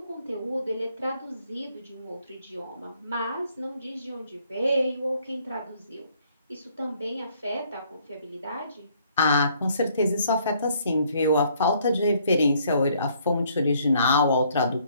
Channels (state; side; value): inverted; both; correlation -0.65